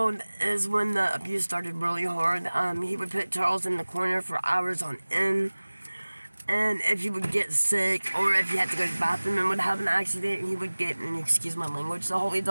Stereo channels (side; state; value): both; inverted; correlation -1.00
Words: is when the abuse started really hard. He would put Charles in the corner for hours on end. And if he would get sick, or if he had to go to the bathroom and would have an accident, he would get, and excuse my language, the holy